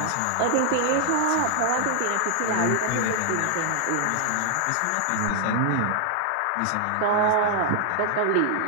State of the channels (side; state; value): both; different; correlation 0.00